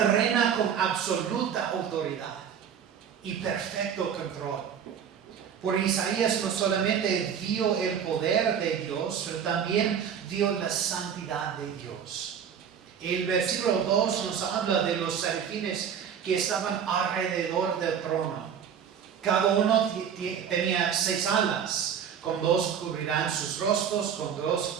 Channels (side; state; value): left; quieter; 8.0 dB